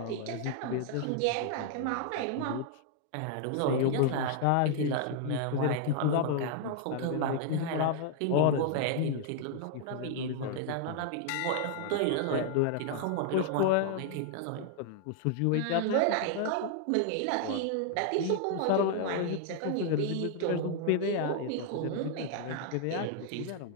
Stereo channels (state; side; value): different; both; correlation 0.00